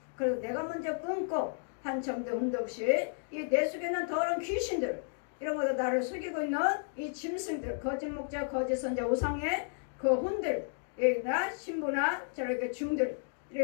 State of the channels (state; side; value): silent; right; digital silence